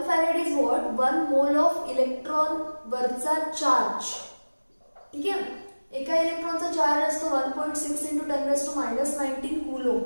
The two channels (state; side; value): inverted; both; correlation -1.00